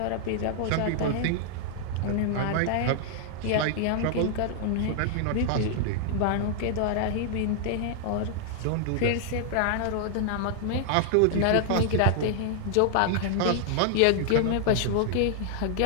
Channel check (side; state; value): both; different; correlation -0.01